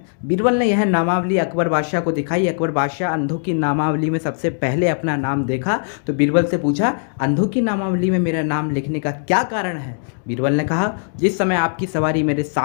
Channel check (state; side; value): silent; right; digital silence